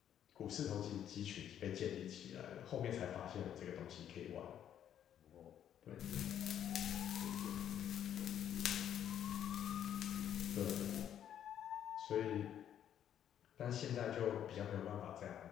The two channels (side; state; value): right; quieter; 10.0 dB